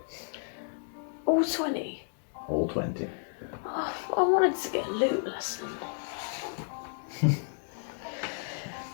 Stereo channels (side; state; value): right; silent; digital silence